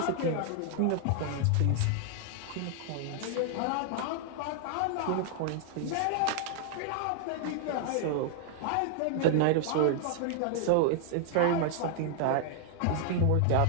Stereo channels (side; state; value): both; different; correlation 0.00